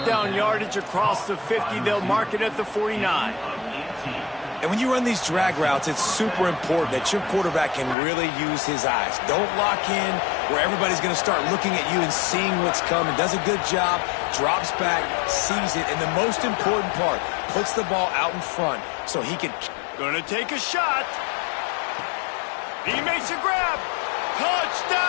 down yardage across the 50. They'll mark it at the 49. And when you run these drag routes, it's super important that your quarterback can really use his eyes. Don't lock in where everybody's going to start looking at you and seeing what's coming. Does a good job, drops back, sees it, and the most important part, puts the ball out in front so he can... Gonna take a shot. He makes a grab.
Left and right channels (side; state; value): right; drops out; at 8.0 s